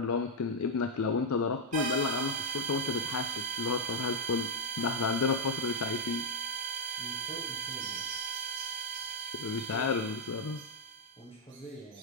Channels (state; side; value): normal; both; correlation -0.03